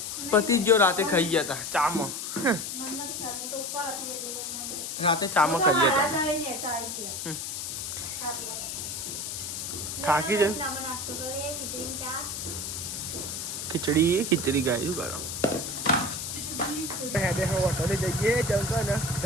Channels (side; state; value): left; noise; hiss, 5 dB below the sound